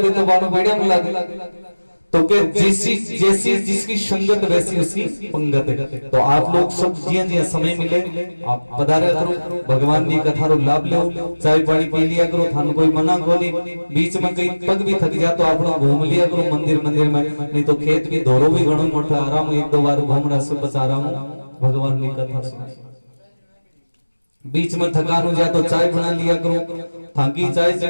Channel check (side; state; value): both; inverted; correlation -1.00